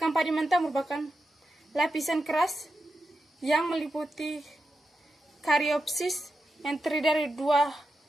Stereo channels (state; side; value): normal; both; correlation 0.88